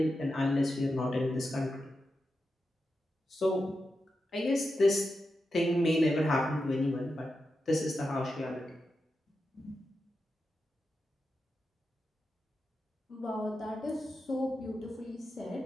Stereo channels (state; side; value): normal; both; correlation 0.89